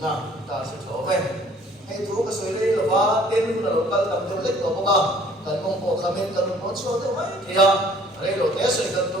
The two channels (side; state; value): both; normal; correlation 0.56